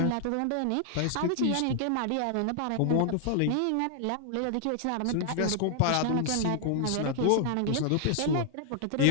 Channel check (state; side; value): different; both; correlation -0.01